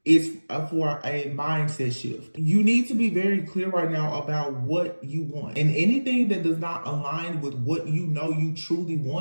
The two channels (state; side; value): inverted; both; correlation -1.00